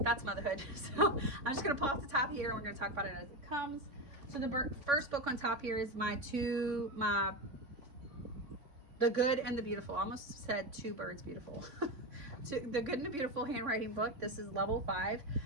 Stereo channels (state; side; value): late; left; 3.6 ms